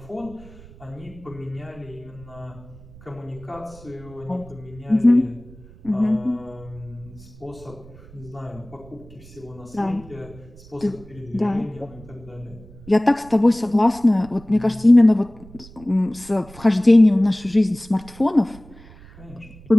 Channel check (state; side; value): noise; right; rumble, 21 dB below the sound